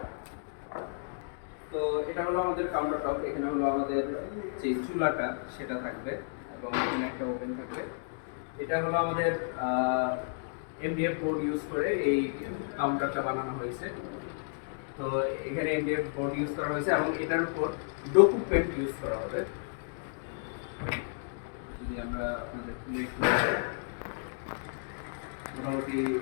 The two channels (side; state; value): right; silent; digital silence